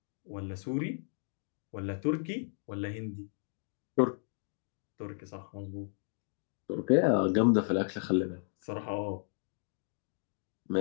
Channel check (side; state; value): right; silent; digital silence